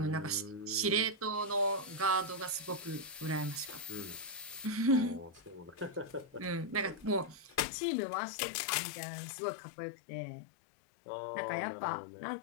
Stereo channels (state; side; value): drops out; right; at 7.7 s